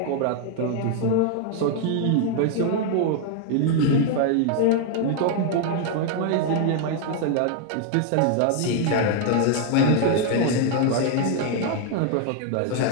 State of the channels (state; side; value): different; both; correlation 0.00